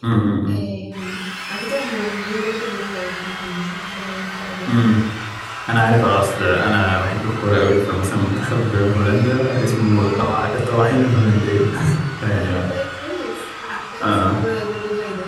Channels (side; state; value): both; identical; correlation 1.00